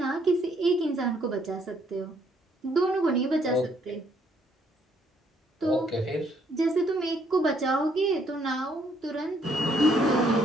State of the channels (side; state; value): both; normal; correlation 0.68